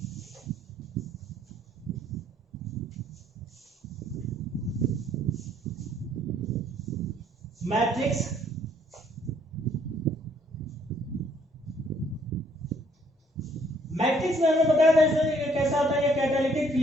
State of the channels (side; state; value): both; normal; correlation 0.64